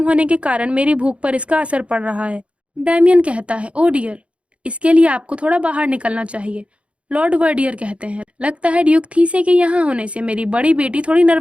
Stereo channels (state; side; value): late; left; 0.061 ms